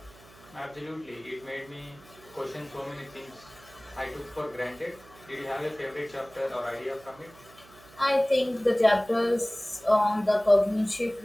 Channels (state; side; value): noise; right; hum, 24 dB below the sound